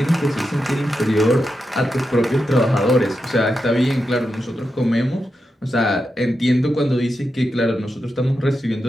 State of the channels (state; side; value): normal; both; correlation 0.88